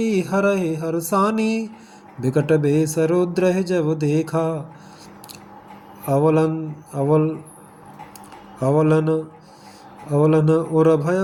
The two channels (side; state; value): both; identical; correlation 1.00